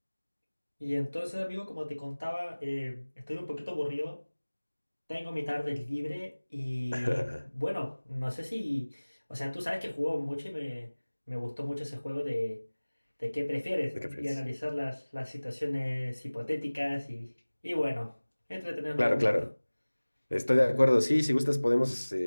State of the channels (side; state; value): both; inverted; correlation -1.00